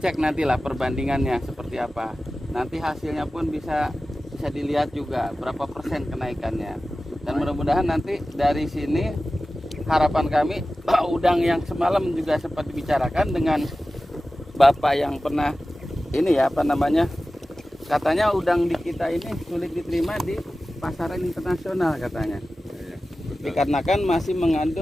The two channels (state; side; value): normal; both; correlation 0.95